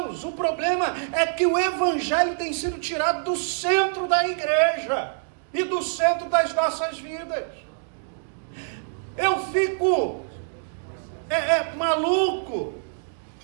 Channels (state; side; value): silent; left; digital silence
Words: o problema é que o Evangelho tem sido tirado do centro da igreja e do centro das nossas vidas. Eu fico maluco